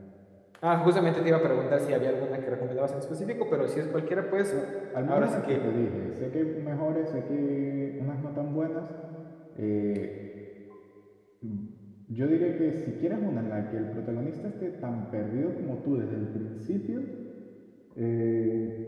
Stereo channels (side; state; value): both; identical; correlation 1.00